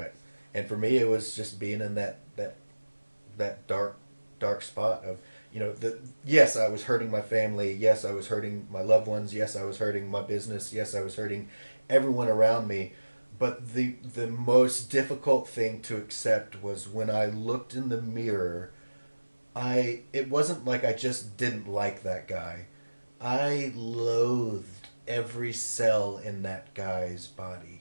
And for me, it was just being in that dark spot of, yes, I was hurting my family. Yes, I was hurting my loved ones. Yes, I was hurting my business. Yes, I was hurting everyone around me. But the most difficult thing to accept was when I looked in the mirror, it wasn't like I just didn't like that guy. I loathed every cell in that guy's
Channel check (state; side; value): inverted; both; correlation -1.00